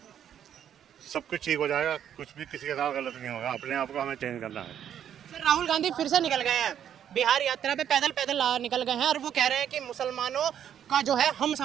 सब कुछ ठीक हो जाएगा, कुछ भी किसी के साथ गलत नहीं होगा, अपने आप को हमें चेंज करना है। सर, राहुल गांधी फिर से निकल गए हैं बिहार यात्रा पे, पैदल पैदल निकल गए हैं, और वो कह रहे हैं कि मुसलमानों का जो है हम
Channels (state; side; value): quieter; left; 9.6 dB